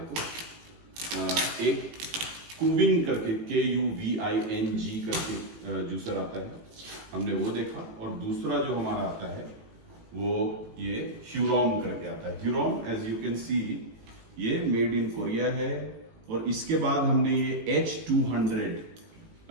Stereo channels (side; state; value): left; late; 18 ms